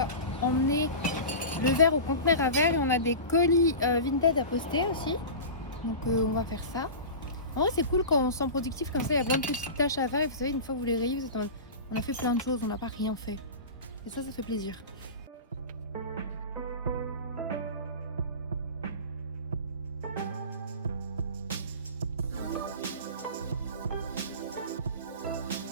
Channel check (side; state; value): both; inverted; correlation -0.30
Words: emmener le verre au conteneur à verre. Et on a des colis Vinted à poster aussi. Donc, on va faire ça. En vrai, c'est cool quand on se sent productif comme ça. Il y a plein de petites tâches à faire. Et vous savez, une fois que vous les rayez, vous êtes en mode, on a fait plein de choses, on n'a pas rien fait. Et ça fait plaisir.